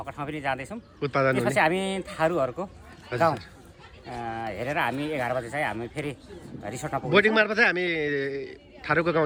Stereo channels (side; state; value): both; identical; correlation 1.00